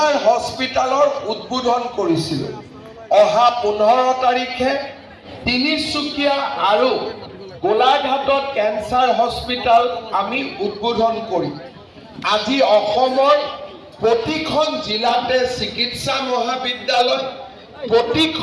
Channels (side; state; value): both; identical; correlation 1.00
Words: হস্পিটেলৰ উদ্বোধন কৰিছিলোঁ। অহা 15 তাৰিখে তিনিচুকীয়া আৰু গোলাঘাটত কেঞ্চাৰ হস্পিটেল আমি উদ্বোধন কৰিম। আজি অসমৰ প্ৰতিখন জিলাতে চিকিৎসা মহাবিদ্যালয়,